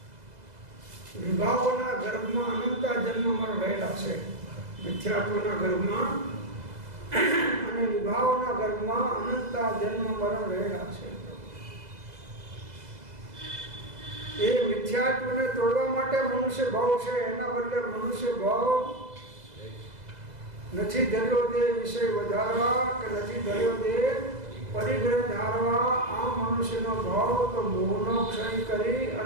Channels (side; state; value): left; late; 2.0 ms